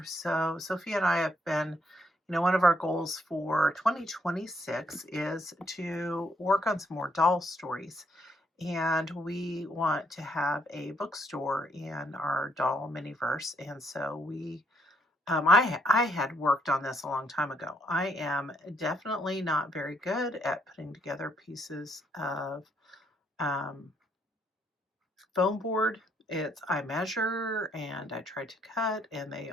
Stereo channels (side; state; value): both; normal; correlation 0.71